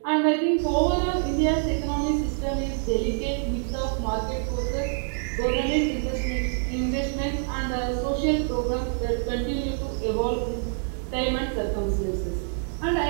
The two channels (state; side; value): silent; left; 61 dB below the other